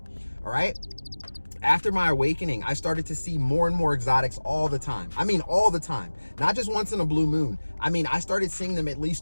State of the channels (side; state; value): both; inverted; correlation -1.00